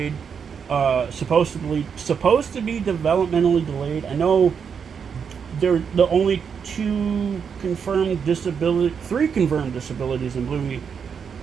Supposed to be developmentally delayed. I know they're the only three confirmed disabilities in Bluey.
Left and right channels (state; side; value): quieter; left; 6.8 dB